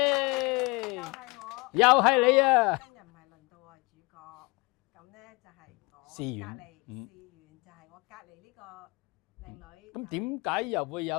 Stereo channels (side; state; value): right; quieter; 26.3 dB